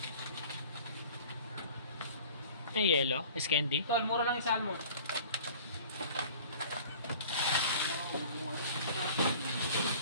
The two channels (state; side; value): inverted; both; correlation -0.46